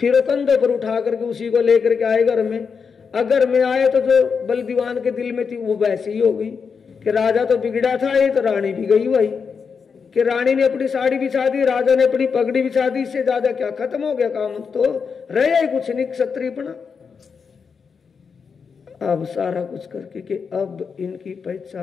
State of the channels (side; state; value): right; quieter; 5.8 dB